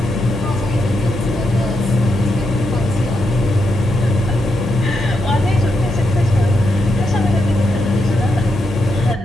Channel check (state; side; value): normal; both; correlation 0.83